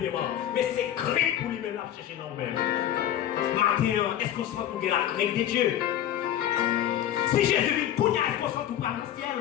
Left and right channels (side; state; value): right; quieter; 11.4 dB